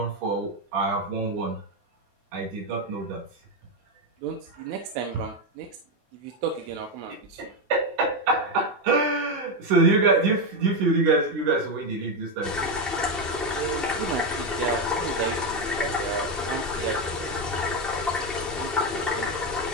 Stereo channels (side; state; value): both; normal; correlation 0.09